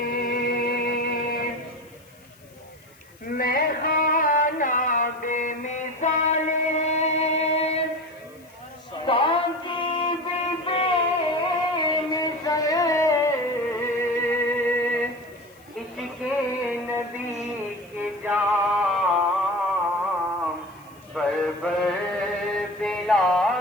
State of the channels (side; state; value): left; noise; hiss, 28 dB below the sound